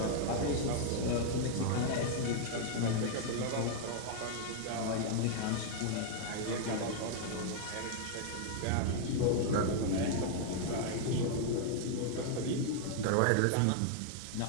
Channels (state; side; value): different; both; correlation 0.00